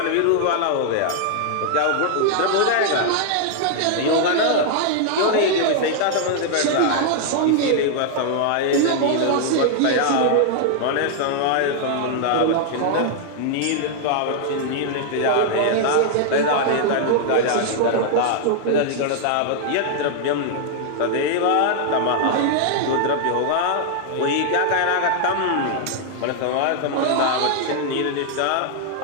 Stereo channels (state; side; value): different; both; correlation -0.01